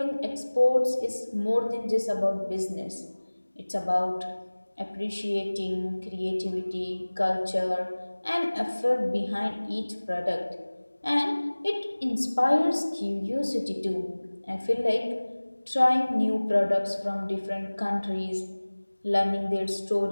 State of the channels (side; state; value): both; inverted; correlation -1.00